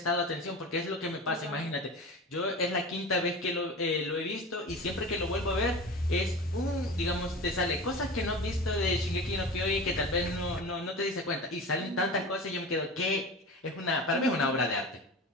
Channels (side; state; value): both; normal; correlation 0.32